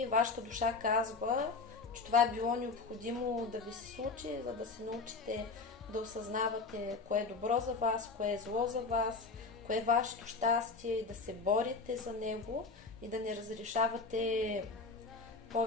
вашата душа казва, че това е било необходимо да ви се случи, за да се научите да осъзнавате кое е добро за вас, кое е зло за вас, кое е вашето щастие и да се борите за него и да не разрешавате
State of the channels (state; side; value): quieter; right; 4.2 dB